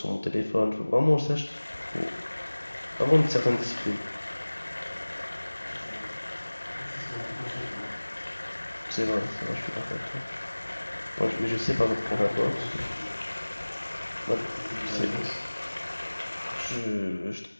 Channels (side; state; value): both; inverted; correlation -1.00